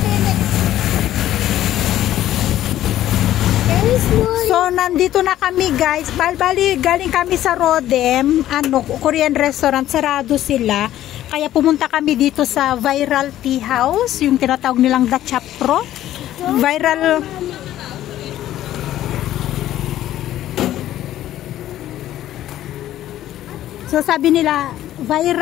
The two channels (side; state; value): right; quieter; 13.1 dB